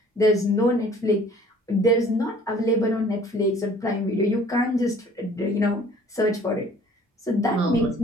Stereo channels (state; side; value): normal; both; correlation 0.53